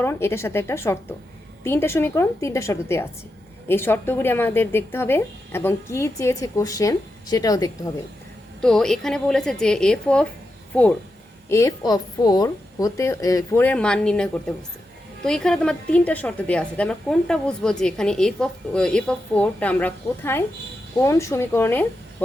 এটার সাথে একটা শর্ত, 3টা সমীকরণ 3টা শর্ত দেওয়া আছে, এই শর্তগুলি আমাদের দেখতে হবে এবং কি চেয়েছে কোশ্চেন সেটাও দেখতে হবে। তো এখানে বলেছে যে এফ অফ 4 হতে 4 এর মান নির্ণয় করতে বলছে। তো এখানে তোমার 3টা শর্ত দেওয়া আছে, আমরা কোনটা বুঝবো যে এখানে এফ অফ 4টা আমরা কোথায় কোন সমীকরণে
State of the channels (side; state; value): both; normal; correlation 0.88